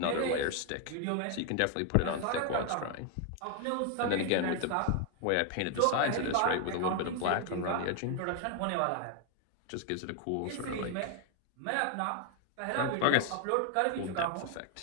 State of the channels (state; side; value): different; both; correlation 0.00